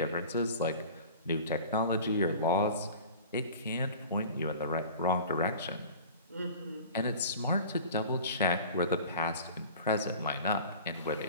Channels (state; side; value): inverted; both; correlation -0.40